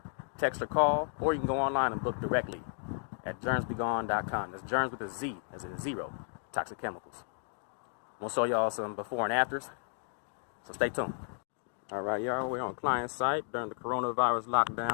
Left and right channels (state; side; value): silent; right; 56 dB below the other